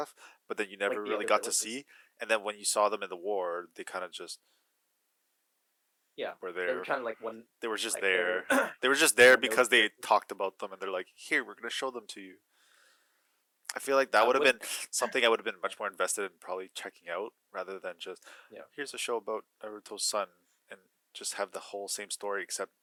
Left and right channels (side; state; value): both; identical; correlation 1.00